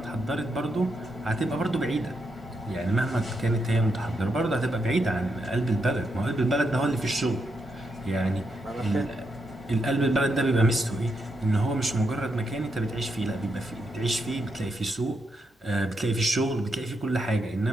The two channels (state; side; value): normal; both; correlation 0.82